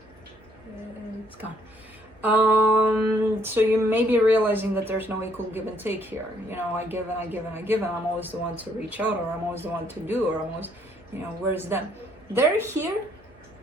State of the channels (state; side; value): normal; both; correlation 0.67